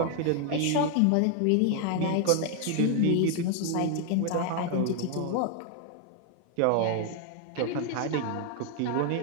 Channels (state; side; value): different; both; correlation 0.00